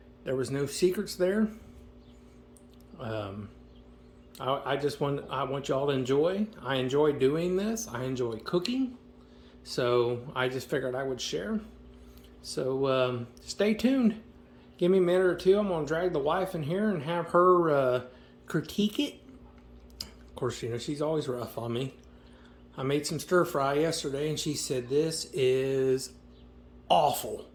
There was no secrets there. I want y'all to enjoy. I enjoy doing this. I enjoy cooking. So I just figured I would share. So stay tuned. Give me a minute or two. I'm going to drag the wife in here and have her critique it. Of course, you know, she's always rough on me. I made some stir fry yesterday and she said, "This is awful."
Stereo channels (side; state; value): both; identical; correlation 1.00